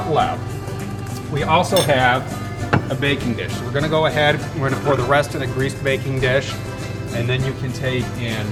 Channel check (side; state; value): both; identical; correlation 1.00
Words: left, we also have a baking dish. So we're gonna go ahead, we're gonna pour the rest in a greased baking dish, and then you can take